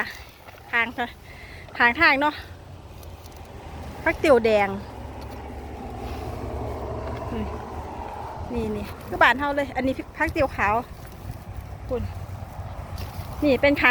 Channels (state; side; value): identical; both; correlation 1.00